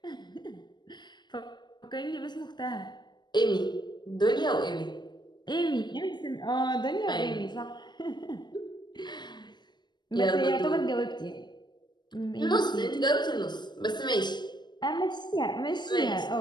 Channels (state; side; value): late; right; 0.21 ms